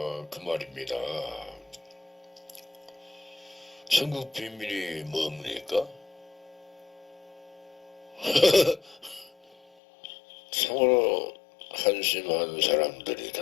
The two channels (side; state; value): right; drops out; at 9.7 s